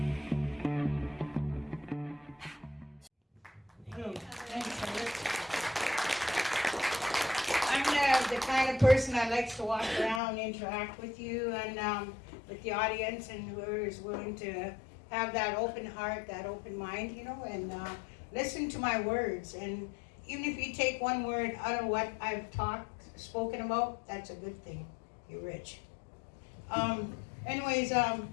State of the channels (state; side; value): drops out; right; at 10.2 s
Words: I'm the kind of person that likes to walk around, interact with you and with the audience, and whoever is willing to have that open heart, that open mind, and listen to my words. And even if you take one word out of what I've spoken about, that's a good thing. You're rich. Anyways,